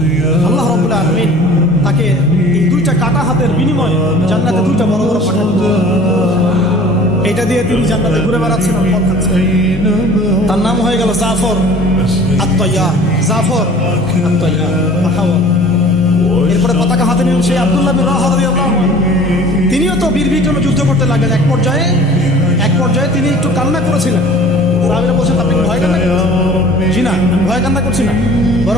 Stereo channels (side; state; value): both; normal; correlation 0.47